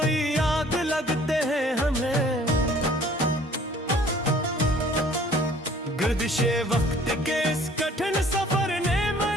आग लगते हैं हमें। गर्दिशे वक्त के इस कठिन सफर ने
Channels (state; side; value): normal; both; correlation 0.54